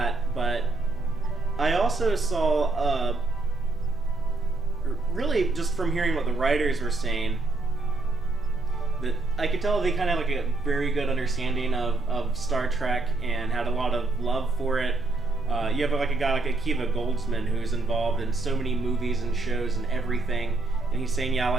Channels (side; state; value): left; quieter; 3.2 dB